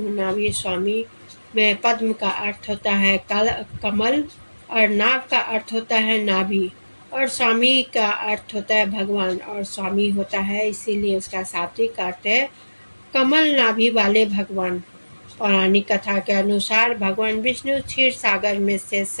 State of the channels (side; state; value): both; inverted; correlation -1.00